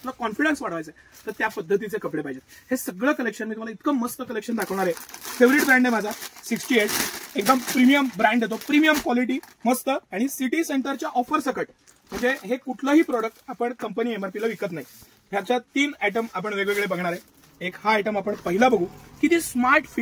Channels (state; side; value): identical; both; correlation 1.00